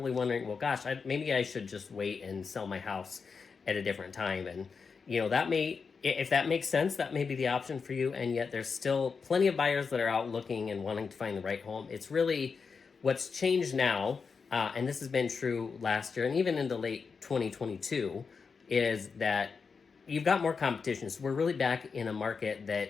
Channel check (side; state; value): right; quieter; 5.3 dB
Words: wondering, well, gosh, maybe I should just wait and sell my house at a different time. And, if that makes sense, that may be the option for you. And yet there's still plenty of buyers that are out looking and wanting to find the right home. It's really what's changed now. And this has been true last year and even into late 2022, is that you've got more competition. So we're really back in a market